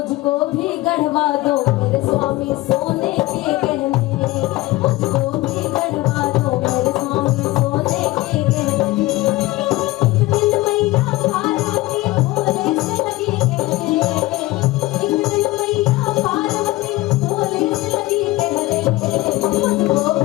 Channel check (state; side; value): quieter; right; 19.0 dB